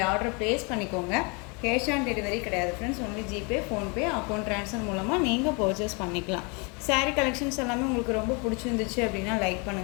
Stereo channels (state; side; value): quieter; right; 31.8 dB